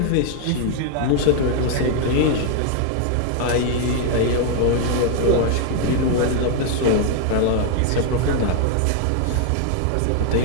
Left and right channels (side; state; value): both; different; correlation 0.00